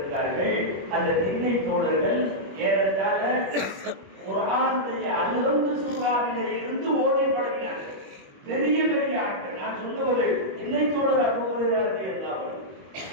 அந்த திண்ணை தோழர்கள் ஏறத்தாழ குர்ஆனுடைய அல்ஹம்து சூராவிலே இருந்து ஓதி பழகினார்கள். பெரிய பெரிய ஆட்கள். நான் சொல்லுவது திண்ணை தோழர் அபூ ஹுரைரா ரலியல்லாஹு அன்ஹு,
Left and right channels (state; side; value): late; left; 21 ms